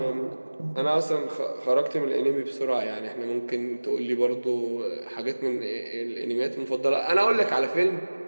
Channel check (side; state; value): both; inverted; correlation -1.00